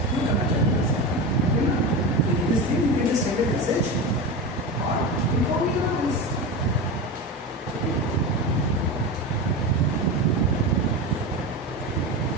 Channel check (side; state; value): both; normal; correlation 0.23